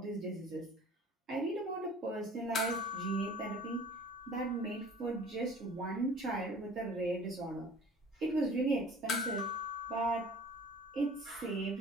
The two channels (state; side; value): normal; both; correlation 0.46